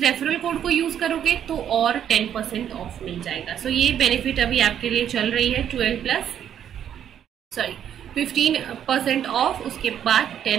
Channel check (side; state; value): left; quieter; 9.6 dB